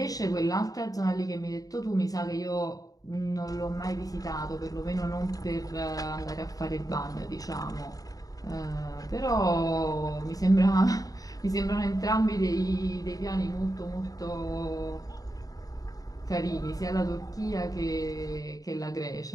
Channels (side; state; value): right; late; 0.18 ms